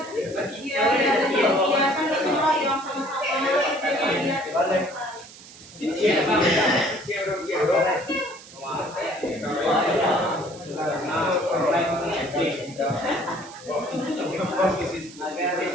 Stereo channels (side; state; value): right; noise; hiss, 19 dB below the sound